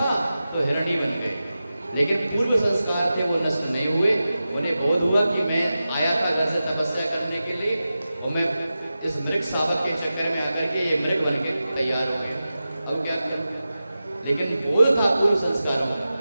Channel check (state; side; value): inverted; both; correlation -0.93